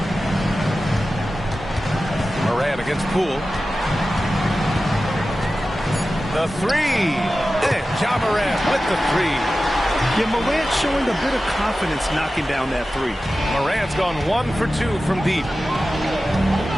Morant against Poole. The three. And Ja Morant with the three. Yeah, Morant showing a bit of confidence knocking down that three. Morant's gone 1 for 2 from deep.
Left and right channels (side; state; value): both; normal; correlation 0.94